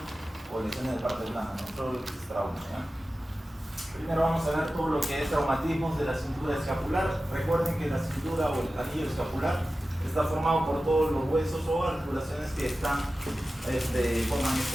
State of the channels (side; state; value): both; normal; correlation 0.95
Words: o lesiones de parte blanda, ¿no? Todo lo que es trauma, ¿no? Primero vamos a ver todo lo que es traumatismos de la cintura escapular. Recuerden que la cintura o el anillo escapular está formado por todos los huesos o articulaciones que forman